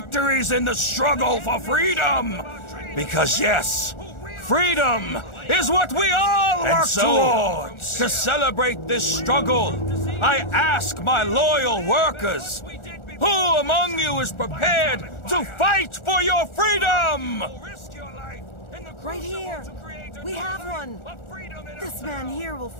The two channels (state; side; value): late; right; 1.4 ms